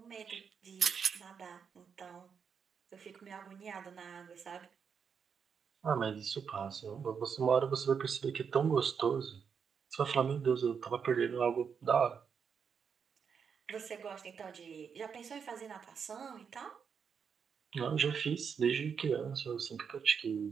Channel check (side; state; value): left; quieter; 6.6 dB